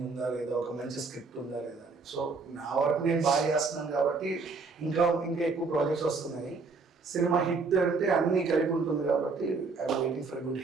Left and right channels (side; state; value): left; quieter; 4.3 dB